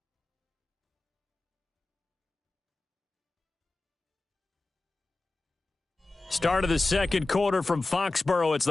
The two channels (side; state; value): right; quieter; 3.2 dB